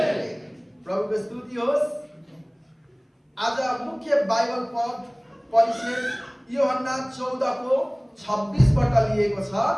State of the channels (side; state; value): both; identical; correlation 1.00